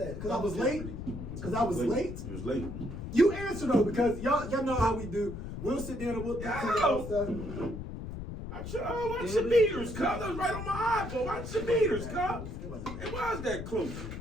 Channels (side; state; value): left; noise; rumble, 8 dB below the sound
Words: Because I was late. Because I was late. He was late. You answer though, because y'all know how we do. We'll sit down and we'll think about stuff. Watch your meters, cuz. That was right on my eyeball. Watch your meters, cuz. It wasn't It was that close.